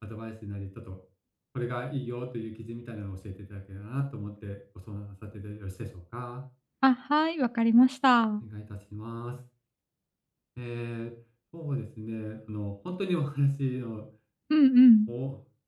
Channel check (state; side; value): identical; both; correlation 1.00